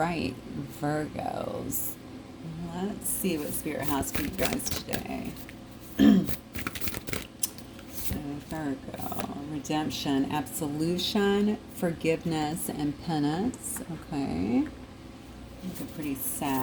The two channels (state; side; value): identical; both; correlation 1.00